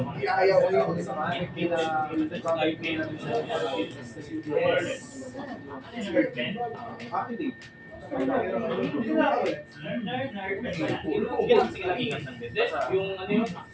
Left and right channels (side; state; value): both; identical; correlation 1.00